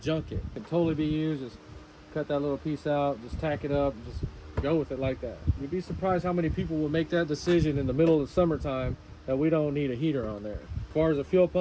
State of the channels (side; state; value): both; identical; correlation 1.00